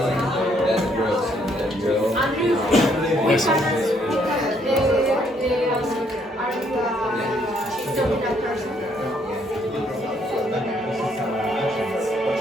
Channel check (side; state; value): both; normal; correlation 0.69